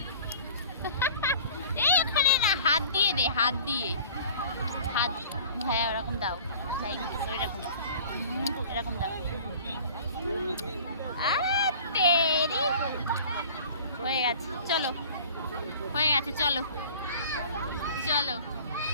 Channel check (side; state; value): both; inverted; correlation -0.45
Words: এই ওখানে না হাত দিয়ে দে হাত দিয়ে হাত হ্যাঁ ওরকম দাও এরকম এরকম দাও তেরি হয়ে গেছে চলো হয়ে গেছে চলো চলো